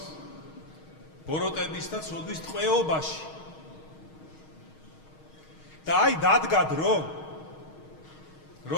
ბოროტების და ცოდვის ტყვეობაში. და აი დადგა დრო,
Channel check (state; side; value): late; right; 6.4 ms